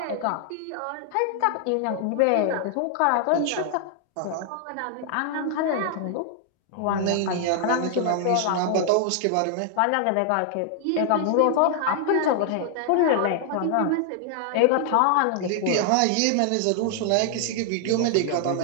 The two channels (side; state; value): both; different; correlation 0.00